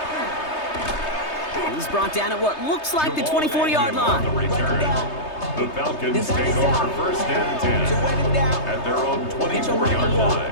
He's brought down at what looks like the 24-yard line. The Falcons take over first and 10 at their own 24-yard line.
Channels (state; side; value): late; right; 3.3 ms